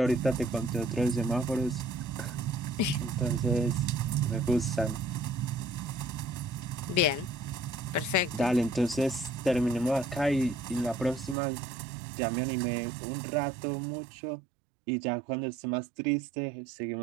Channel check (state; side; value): drops out; left; at 11.4 s